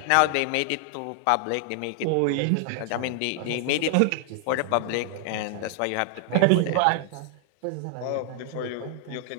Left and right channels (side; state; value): both; different; correlation 0.00